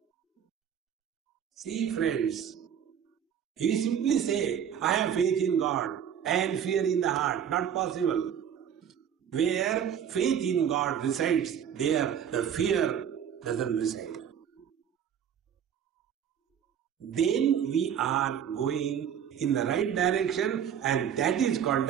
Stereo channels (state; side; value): quieter; left; 8.7 dB